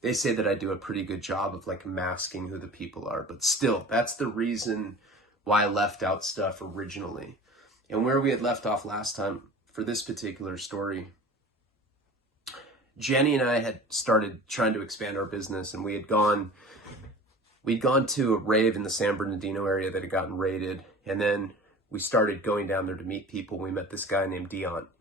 they say that I do a pretty good job of like masking who the people are, but still, that's the reason why I left out stuff originally. And where we had left off last time for this particular story, Jenny and I had started trying to expand our business, and we'd gone to a rave in the San Bernardino area that had gotten raided, and then we started going down there to meet people. We met this guy named Dion.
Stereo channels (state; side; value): normal; both; correlation 0.40